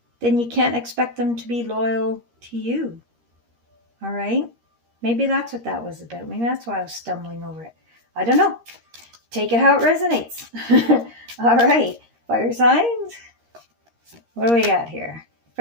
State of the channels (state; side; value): late; left; 13 ms